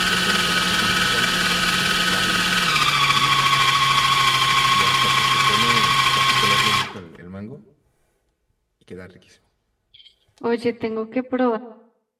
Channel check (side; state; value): both; identical; correlation 1.00